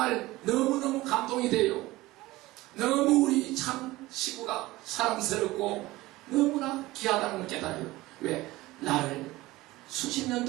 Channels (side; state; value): left; quieter; 18.8 dB